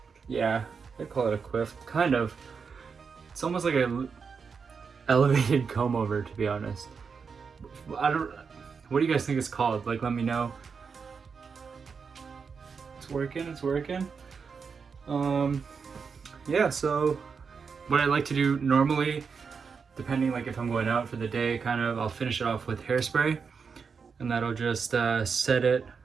yeah, I call it a quiff, kind of. It's almost like a elevated comb over, to be honest. What do you guys think it's called? Like, let me know. It's working. Yeah, so what I like to do normally, depending like if I'm going out for the day, kind of, I'll finish it off with hairspray, and that'll just set it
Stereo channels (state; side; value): quieter; left; 5.7 dB